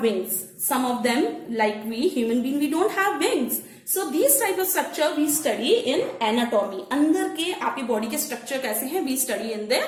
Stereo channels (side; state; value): both; identical; correlation 1.00